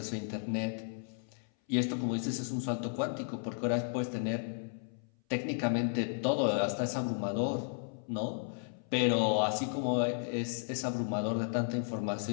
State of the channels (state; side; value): silent; right; 55 dB below the other